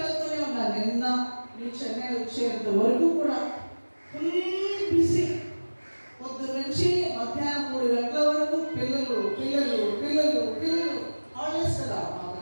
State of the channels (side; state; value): both; inverted; correlation -1.00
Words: ఉన్నాను. నిన్న నేను చెన్నై వచ్చేంత వరకు కూడా ఫుల్ బిజీ. పొద్దున్న నుంచి మధ్యాహ్నం 3 గంటల వరకు పిల్లలు పిల్లలు పిల్లలు పిల్లలు. హాలిడేస్ కదా మాకు